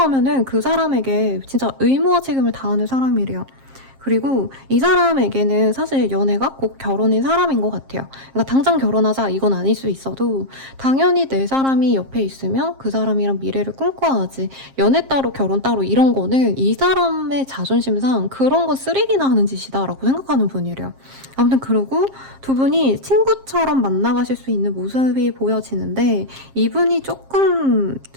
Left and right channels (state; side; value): late; left; 7.5 ms